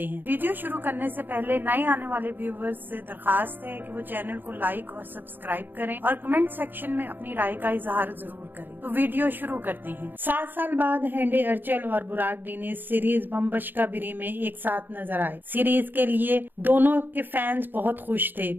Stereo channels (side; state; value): left; late; 0.092 ms